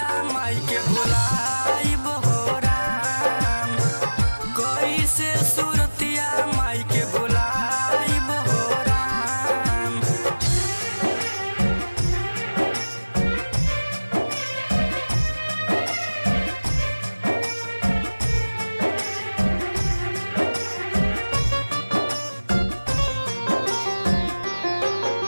माई के भुलाइब हो राम, कैसे सूरतिया माई के भुलाइब हो राम।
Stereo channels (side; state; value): both; inverted; correlation -1.00